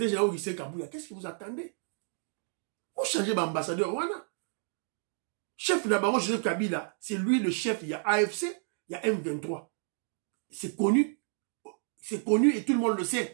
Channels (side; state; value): left; silent; 57 dB below the other